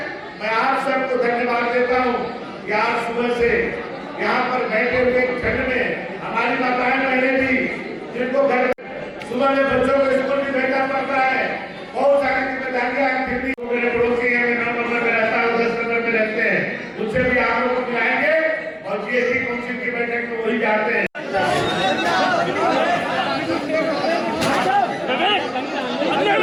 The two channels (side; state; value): both; identical; correlation 1.00